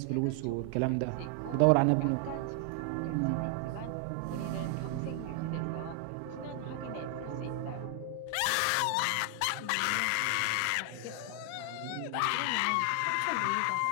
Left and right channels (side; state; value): both; different; correlation 0.00